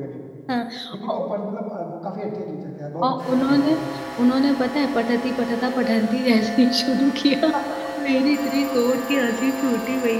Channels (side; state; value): both; identical; correlation 1.00